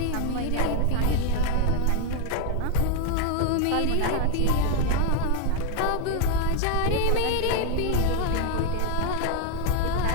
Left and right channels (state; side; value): different; both; correlation 0.00